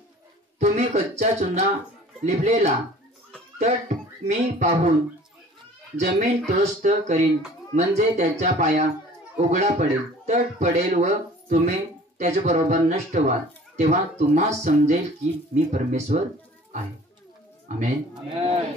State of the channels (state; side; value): normal; both; correlation 0.48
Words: तुम्ही कच्चा चुना लिपलेला तट मी पाहून जमीन त्रस्त करीन, म्हणजे त्याचा पाया उघडा पडेल, तट पडेल व तुम्ही त्याच्या बरोबर नष्ट व्हाल. तेव्हा तुम्हा समजेल की मी परमेश्वर आहे. आमेन.